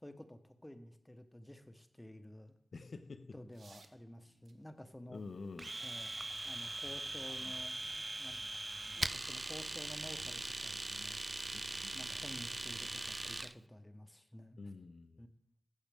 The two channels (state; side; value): normal; both; correlation 0.98